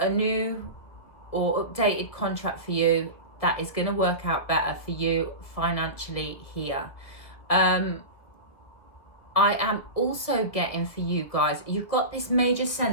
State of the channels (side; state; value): right; late; 1.9 ms